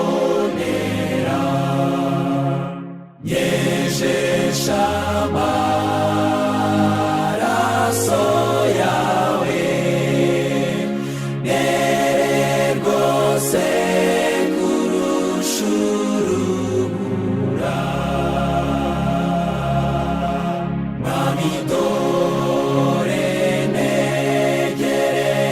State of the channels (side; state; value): both; identical; correlation 1.00